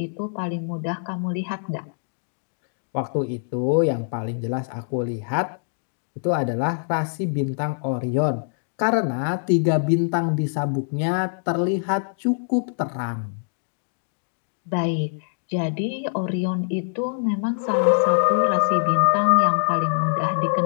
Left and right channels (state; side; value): silent; right; digital silence